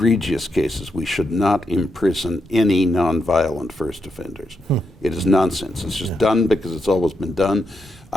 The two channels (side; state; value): both; normal; correlation 0.82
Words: cases, we should not imprison any nonviolent first offenders. It is nonsense. It's just done because it's always been done.